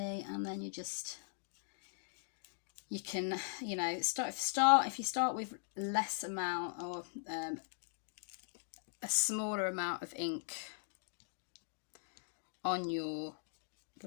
and then you can, you know, if you start with less amount, or a smaller amount of ink on your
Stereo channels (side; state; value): right; silent; digital silence